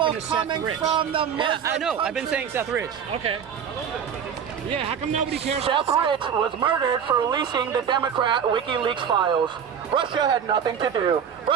coming from the Muslim yeah, I know. I've been saying Seth Rich. Okay. Yeah, how come nobody cares? Seth Rich was murdered for releasing the Democrat WikiLeaks files. Russia had nothing to do.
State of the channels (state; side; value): quieter; left; 7.8 dB